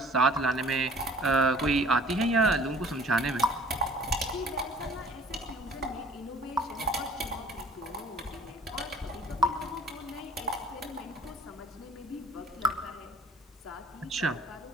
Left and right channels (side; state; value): both; normal; correlation 0.51